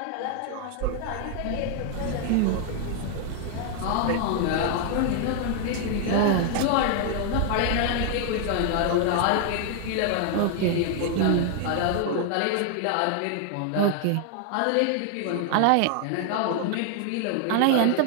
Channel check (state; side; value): different; both; correlation 0.00